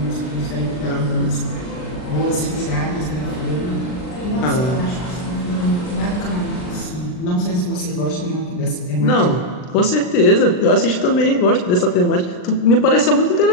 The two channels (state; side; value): late; right; 39 ms